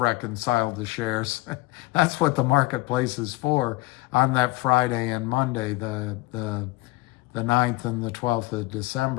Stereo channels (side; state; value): right; quieter; 21.0 dB